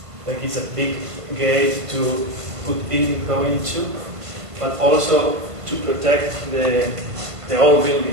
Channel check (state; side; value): late; left; 1.5 ms